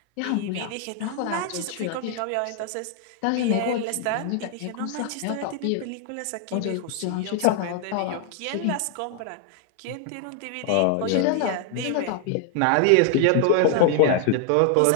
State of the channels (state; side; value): different; both; correlation 0.00